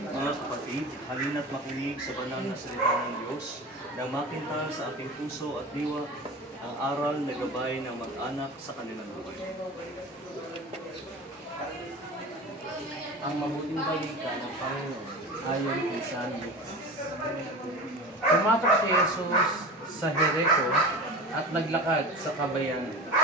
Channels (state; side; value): normal; both; correlation 0.31